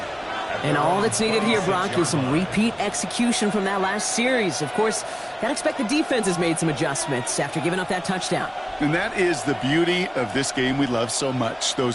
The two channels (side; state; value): both; identical; correlation 1.00